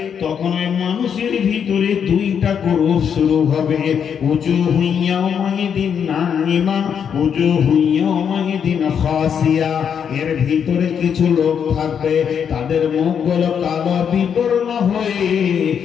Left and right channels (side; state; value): right; quieter; 7.6 dB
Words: তখন ওই মানুষের ভিতরে দুইটা গ্রুপ শুরু হবে। উজুহু ইয়াওমাইদিন নাইমা, উজুহু ইয়াওমাইদিন খাসিয়া। এর ভিতরে কিছু লোক থাকবে, তাদের মুখগুলো কালো বিবর্ণ হয়ে